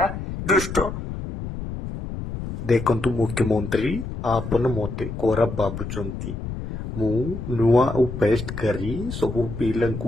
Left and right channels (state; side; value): noise; left; rumble, 7 dB below the sound